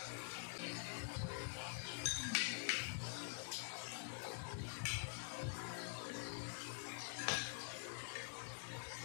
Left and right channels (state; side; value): silent; right; digital silence